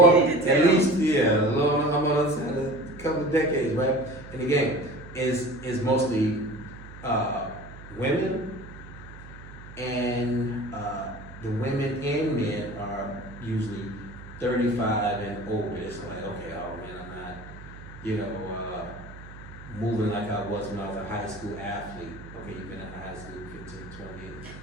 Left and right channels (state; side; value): noise; right; hum, 16 dB below the sound